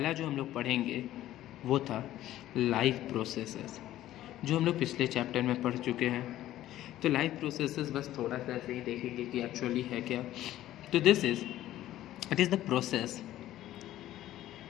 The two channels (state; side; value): quieter; right; 13.8 dB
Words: जो हम लोग पढ़ेंगे वो था लाइफ प्रोसेसेस, जो हम लोग पिछले चैप्टर में पढ़ चुके हैं. तो लाइफ प्रोसेसेस बस थोड़ा सा ऐसे ही देखेंगे कि एक्चुअली है क्या. तो it is